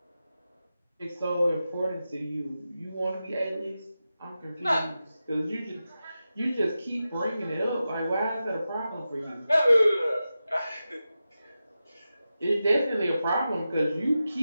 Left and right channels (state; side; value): inverted; both; correlation -0.92